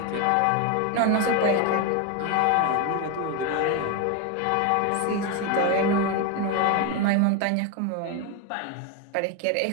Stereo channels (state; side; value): different; both; correlation 0.02